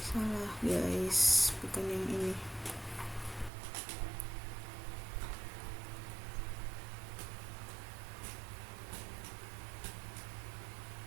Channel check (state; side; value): drops out; left; at 3.5 s